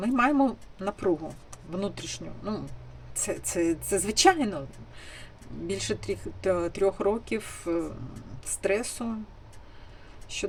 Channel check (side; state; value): both; identical; correlation 1.00